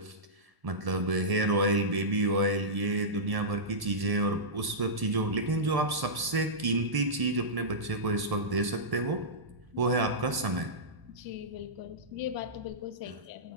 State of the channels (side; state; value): left; late; 1.0 ms